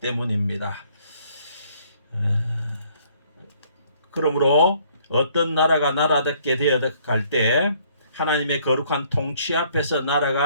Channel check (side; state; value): both; inverted; correlation -0.62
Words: 그러므로 어떤 나라가 나라답게 되어갈 때 하나님의 거룩한 통치 앞에서